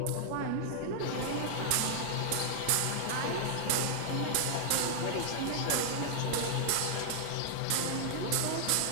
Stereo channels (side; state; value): both; different; correlation -0.01